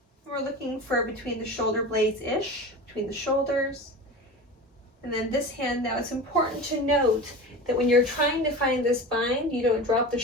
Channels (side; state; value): both; normal; correlation 0.31